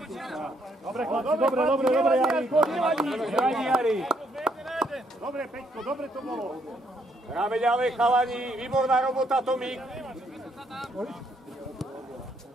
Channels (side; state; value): both; normal; correlation 0.71